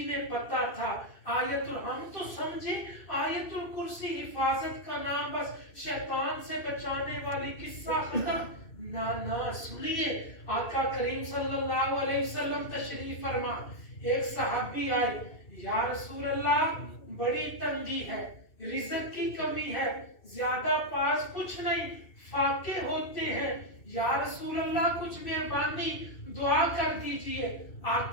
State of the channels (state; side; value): late; right; 2.6 ms